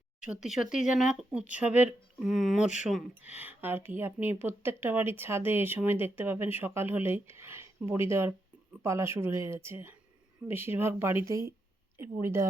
সত্যি সত্যিই যেন এক উৎসবের মরশুম আর কি। আপনি প্রত্যেকটা বাড়ির ছাদে এই সময় দেখতে পাবেন সকাল হলেই বড়ি দেওয়ার পালা শুরু হয়ে গেছে। বেশিরভাগ বাড়িতেই বড়ি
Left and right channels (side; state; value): both; normal; correlation 0.83